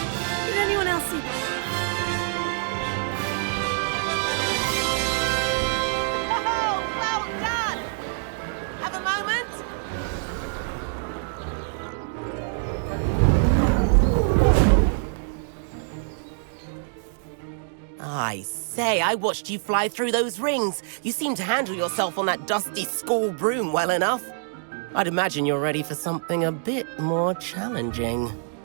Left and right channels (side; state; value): left; silent; digital silence